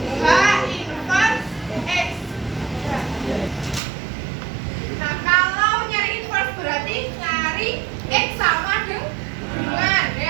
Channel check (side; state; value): left; drops out; at 3.8 s